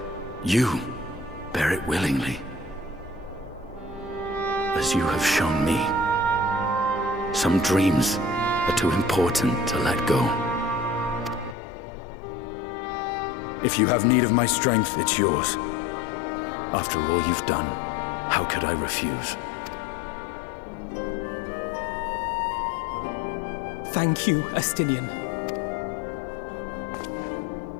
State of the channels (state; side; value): drops out; right; at 11.6 s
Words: you bear it willingly, as you have shown me. Some dreams are too important to let go. If you have need of my strength, it's yours. After all you've done, how could I refuse? Thank you, Estinian.